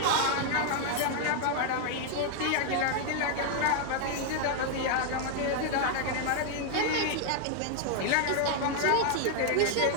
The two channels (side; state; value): both; different; correlation 0.00